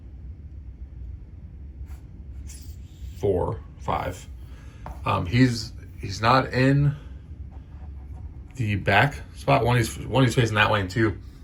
4, 5. He's not in the back spot. One he's facing that way, and 2,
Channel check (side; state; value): both; identical; correlation 1.00